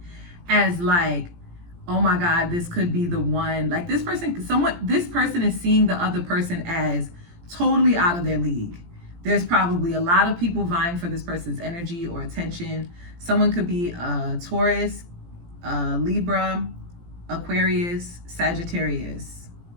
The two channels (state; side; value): late; left; 17 ms